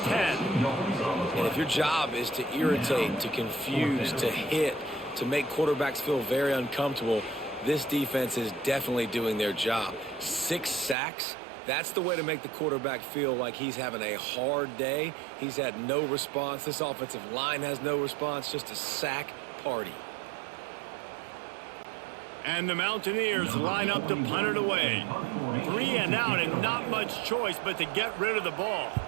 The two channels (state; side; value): drops out; left; at 11.0 s